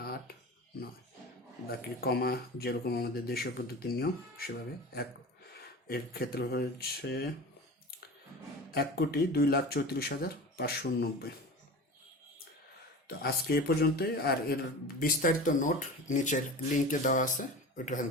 8, 9, বাকি কমা যেরকম আমাদের দেশীয় পদ্ধতির নিয়ম সেভাবে। এর ক্ষেত্রে হচ্ছে 1,02,34,590। তো আজকে এ পর্যন্তই। আর এর বিস্তারিত নোট নিচের লিঙ্কে দেওয়া আছে, ওইখান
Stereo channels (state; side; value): normal; both; correlation 0.33